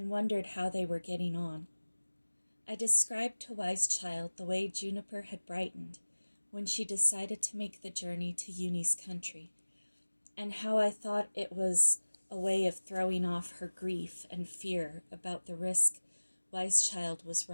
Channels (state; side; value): inverted; both; correlation -1.00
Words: wondered how they were getting on. I described to Wise Child the way Juniper had brightened when she decided to make the journey to Uni's country, and how I thought it was a way of throwing off her grief and fear about the risk Wise Child was